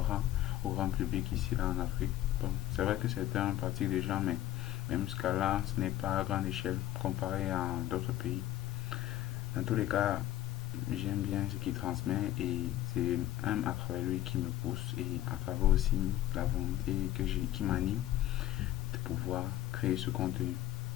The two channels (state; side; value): quieter; right; 13.8 dB